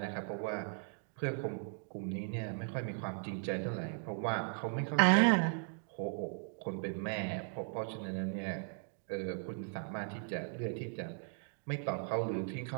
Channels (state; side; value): silent; left; 53 dB below the other